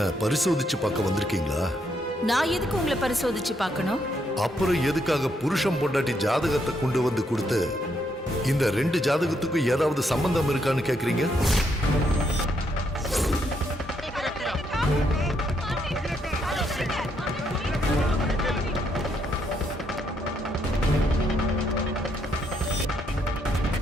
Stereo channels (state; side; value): normal; both; correlation 0.75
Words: பரிசோதிச்சு பார்க்க வந்திருக்கீங்களா? நான் எதுக்கு உங்களை பரிசோதிச்சு பார்க்கணும்? அப்புறம் எதுக்காக புருஷன் பொண்டாட்டி ஜாதகத்தை கொண்டு வந்து கொடுத்து இந்த 2 ஜாதகத்துக்கும் ஏதாவது சம்பந்தம் இருக்கான்னு கேக்குறீங்க?